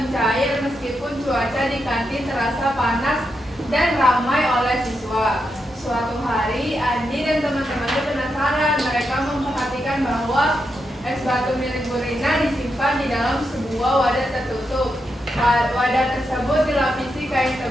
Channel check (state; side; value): normal; both; correlation 0.84